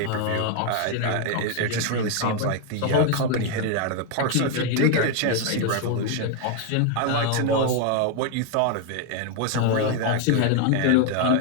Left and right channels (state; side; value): different; both; correlation 0.01